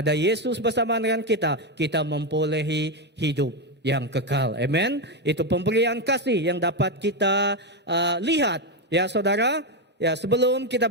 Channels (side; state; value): both; normal; correlation 0.07